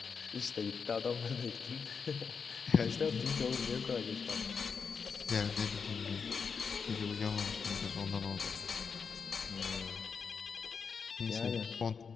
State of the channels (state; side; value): quieter; right; 5.7 dB